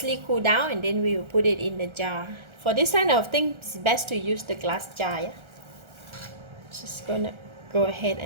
cooled down, and then we will put it in the jar. For this kind of thing, it's best to use the glass jar. Yeah? Just gonna go ahead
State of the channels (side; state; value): left; late; 1.3 ms